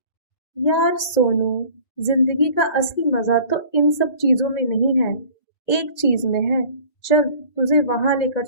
यार सोनू, जिंदगी का असली मजा तो इन सब चीजों में नहीं है, एक चीज में है, चल तुझे वहां लेकर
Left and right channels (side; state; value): right; late; 1.9 ms